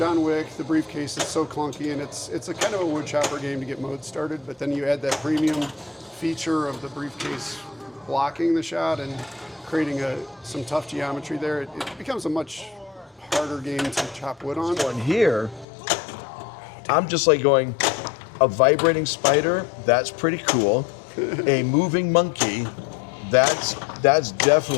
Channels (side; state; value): right; drops out; at 15.7 s